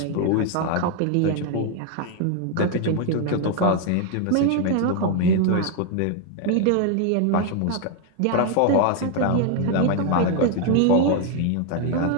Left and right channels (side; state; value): both; different; correlation 0.01